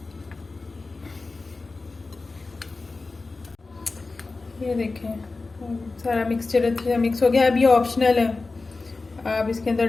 ये देखें सारा मिक्सचर अच्छे से मिक्स हो गया। अब ये ऑप्शनल है, आप इसके अंदर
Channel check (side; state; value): right; quieter; 3.7 dB